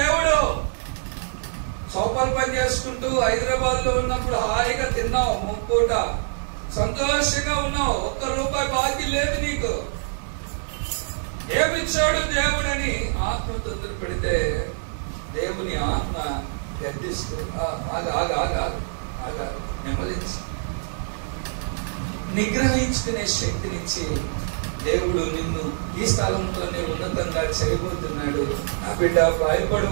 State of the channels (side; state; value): left; silent; digital silence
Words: చౌపలు పని చేసుకుంటూ హైదరాబాద్ లో ఉన్నప్పుడు హాయిగా తిన్నావు, ముప్పూట సంతోషంగా ఉన్నావు, ₹1 బాకీ లేదు నీకు. ఏమిచ్చాడు దేవుడని ఆత్మ తొందర పెడితే దేవుని ఆత్మ గడ్డిస్తూ నెమ్మదించి నిగ్రహించుకునే శక్తినిచ్చి దేవుడు నిన్ను ఈ స్థలంలోనే ఉన్నతంగా చేయబోతున్నాడు, నా బిడ్డ